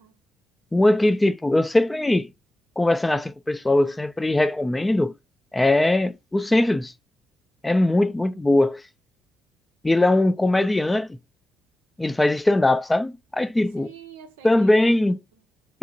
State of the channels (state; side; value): normal; both; correlation 0.98